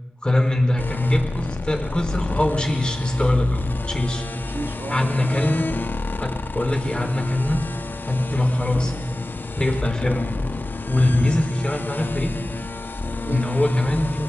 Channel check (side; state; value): both; normal; correlation 0.96